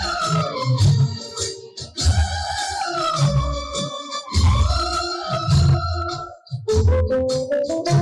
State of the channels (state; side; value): identical; both; correlation 1.00